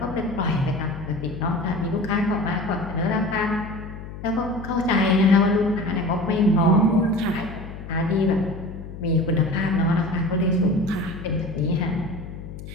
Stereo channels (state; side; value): noise; left; hum, 12 dB below the sound